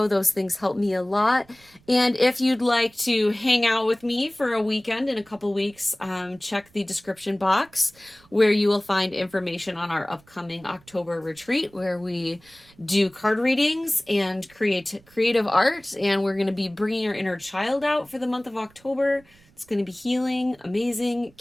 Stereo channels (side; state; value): right; noise; rumble, 29 dB below the sound